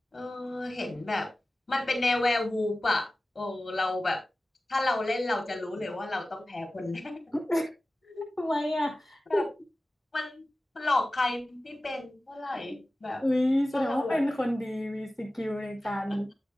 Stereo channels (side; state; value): both; normal; correlation 0.96